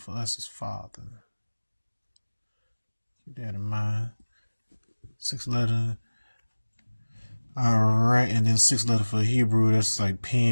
us is father. Keep that in mind. 6th letter. All right. And then 6th letter for Hebrew, that's like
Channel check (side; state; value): both; inverted; correlation -1.00